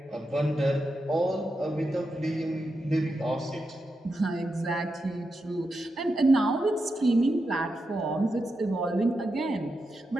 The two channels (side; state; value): both; normal; correlation 0.87